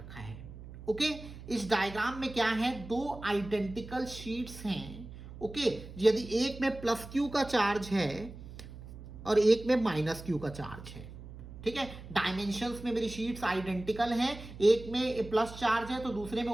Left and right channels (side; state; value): right; noise; hum, 14 dB below the sound